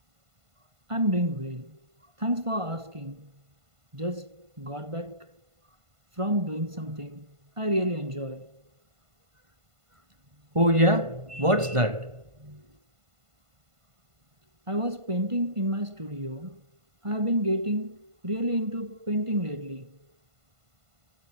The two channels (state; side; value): late; left; 1.5 ms